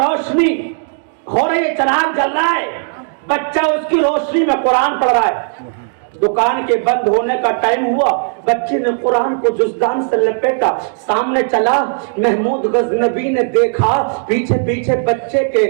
روشنی ہو رہی ہے، چراغ جل رہا ہے، بچہ اس کی روشنی میں قرآن پڑھ رہا ہے۔ دکان کے بند ہونے کا ٹائم ہوا، بچے نے قرآن کو جزدان سے لپیٹا، سامنے چلا، محمود غزنبی نے دیکھا پیچھے پیچھے بچے کے،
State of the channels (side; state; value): left; silent; 69 dB below the other